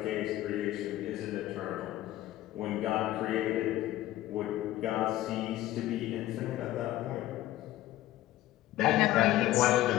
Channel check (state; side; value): quieter; right; 15.0 dB